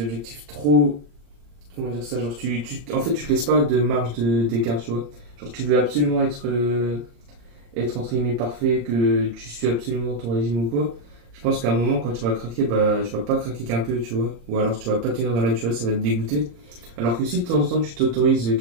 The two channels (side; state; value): left; late; 34 ms